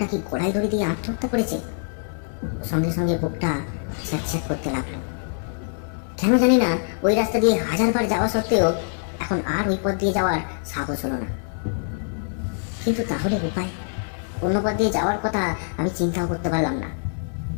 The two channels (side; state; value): right; silent; 62 dB below the other